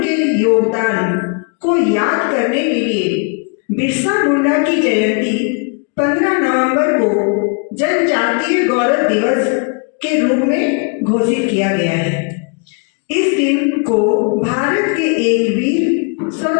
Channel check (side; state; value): right; quieter; 38.5 dB